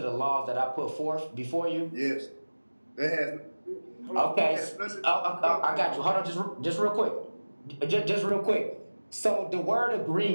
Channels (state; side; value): inverted; both; correlation -1.00